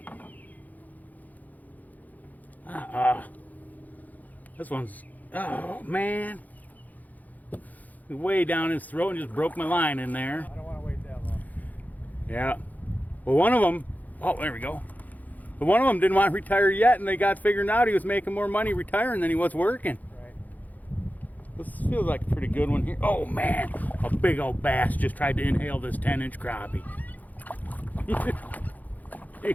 This one's, oh man. Way down his throat and just broke my line in there. I don't want to wait that long. Yeah. Well, one of them, oh, there we go. But one of them didn't want to retire yet, and they got figured out he was making more money retiring than he was working. Right. This feels like a pretty good one here. Oh man, a big old bass just tried to inhale this 10-inch crappie. He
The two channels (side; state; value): right; late; 0.080 ms